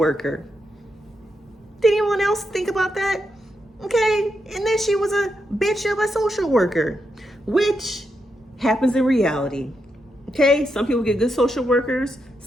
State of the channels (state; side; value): normal; both; correlation 0.84